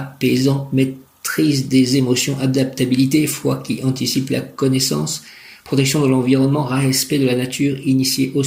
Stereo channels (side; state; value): both; identical; correlation 1.00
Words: maîtrise des émotions, adaptabilité, foi qui anticipe la connaissance, protection de l'environnement, respect de la nature, initié au